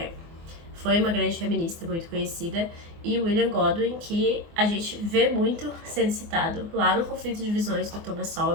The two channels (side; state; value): left; late; 24 ms